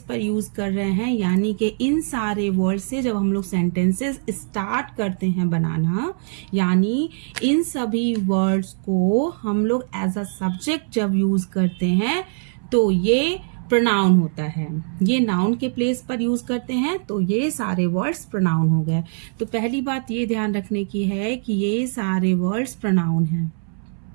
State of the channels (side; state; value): left; silent; 63 dB below the other